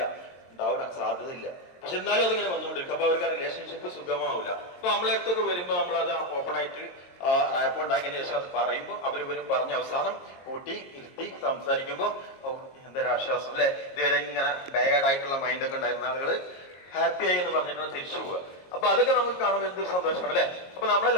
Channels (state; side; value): late; right; 22 ms